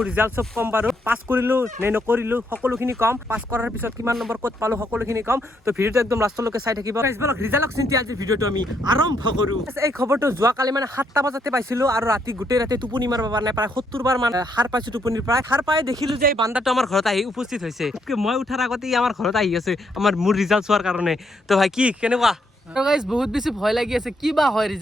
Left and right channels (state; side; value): normal; both; correlation 0.74